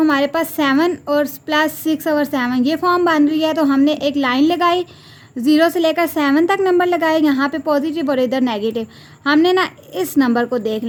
पास 7 और प्लस 6/7 ये फॉर्म बन रही है। तो हमने एक लाइन लगाई, 0 से लेकर 7 तक नंबर लगाए, यहाँ पे पॉजिटिव और इधर नेगेटिव। हमने ना इस नंबर को देख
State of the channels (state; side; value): identical; both; correlation 1.00